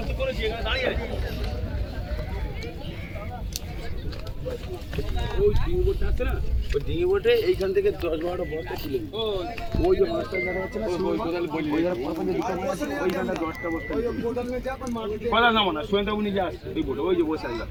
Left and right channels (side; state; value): both; identical; correlation 1.00